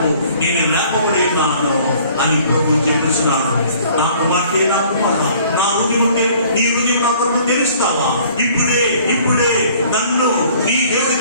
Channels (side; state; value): both; inverted; correlation -0.54